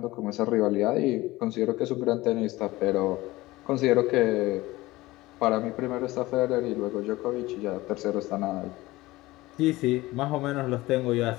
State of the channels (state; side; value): quieter; right; 19.1 dB